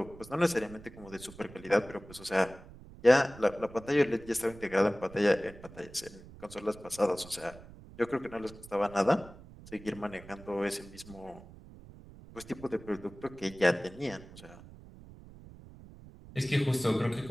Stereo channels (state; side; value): noise; right; rumble, 18 dB below the sound